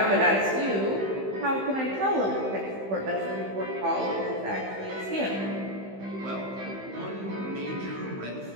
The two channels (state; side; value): late; left; 15 ms